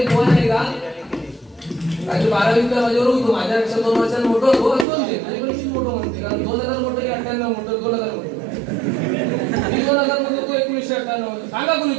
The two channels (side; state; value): left; drops out; at 4.9 s